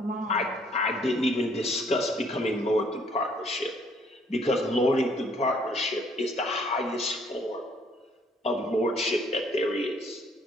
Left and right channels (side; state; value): both; normal; correlation 0.63